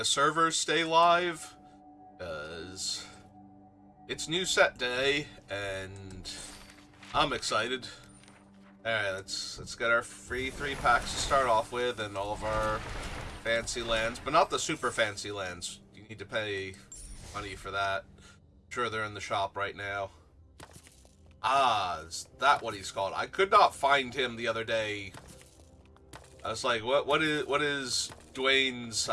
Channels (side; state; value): both; identical; correlation 1.00